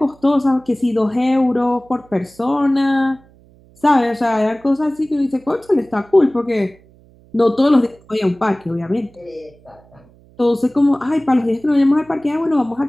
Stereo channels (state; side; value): noise; right; hum, 28 dB below the sound